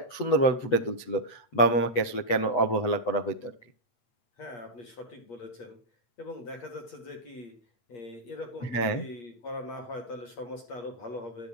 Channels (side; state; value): right; late; 8.1 ms